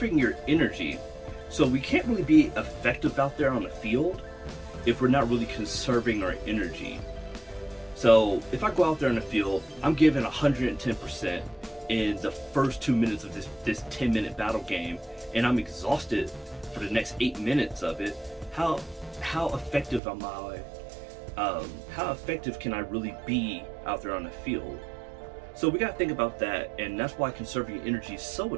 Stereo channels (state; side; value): drops out; left; at 20.0 s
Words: your energy. So we can't really be effective out there on the field if we're not really conserving our energy. So if I go out there in the field, I'm giving 110% in the first 2 minutes of this 10-minute battle game, and I'm exhausted for the next 8 minutes of it. How effective am I? How effective can I really be out there on the field? So we gotta think about that, and that's why conserving energy is so